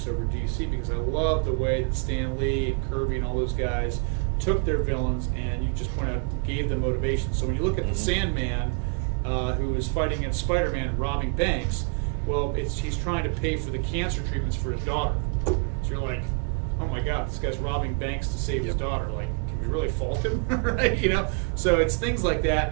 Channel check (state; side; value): quieter; left; 35.9 dB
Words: over DC, because I love the way that Stan Lee and Kirby and all those guys took their villains and, you just pointed out, gave them motivation. So when you look at the Sandman, who is fighting against Spider-Man and robbing banks, well, he's trying to pay for the cancer treatments for his daughter. So you're like, oh my God, this guy's robbing banks to save his daughter. Like, can we really fault him, right? You know, so it's things like that,